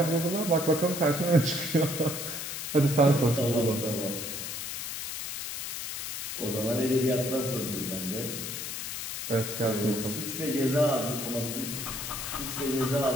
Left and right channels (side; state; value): left; noise; hiss, 5 dB below the sound